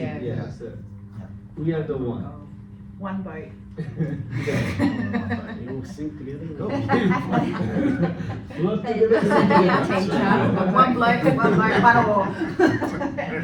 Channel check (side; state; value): both; identical; correlation 1.00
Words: Yeah. Yeah, so we are the one. One boat. You all sink together. Work They- together. One bloke, one oar.